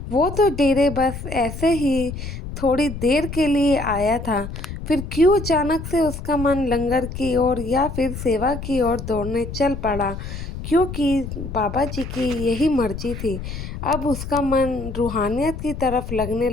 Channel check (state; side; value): noise; left; rumble, 8 dB below the sound